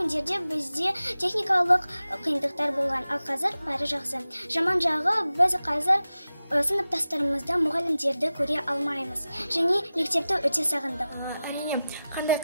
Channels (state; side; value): inverted; both; correlation -0.94